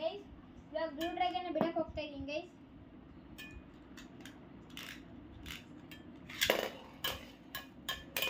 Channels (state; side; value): identical; both; correlation 1.00